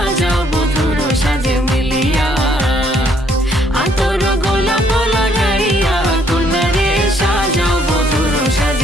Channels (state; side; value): normal; both; correlation 0.68